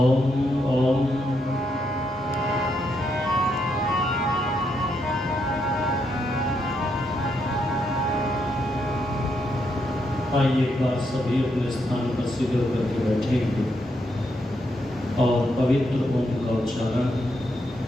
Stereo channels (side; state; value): both; normal; correlation 0.79